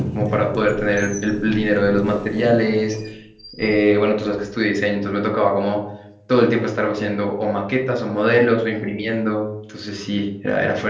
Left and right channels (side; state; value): both; identical; correlation 1.00